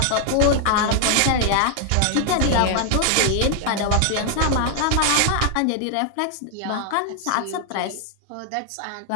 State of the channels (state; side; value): different; both; correlation 0.00